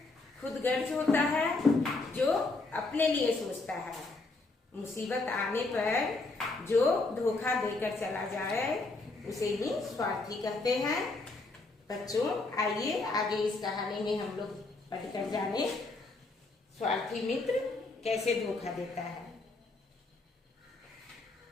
खुदगर्ज होता है, जो अपने लिए सोचता है। मुसीबत आने पर जो धोखा देकर चला जाए उसे ही स्वार्थी कहते हैं। बच्चों आइए आगे इस कहानी में हम लोग पढ़कर जाने स्वार्थी मित्र कैसे धोखा देता है।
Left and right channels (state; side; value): quieter; right; 3.4 dB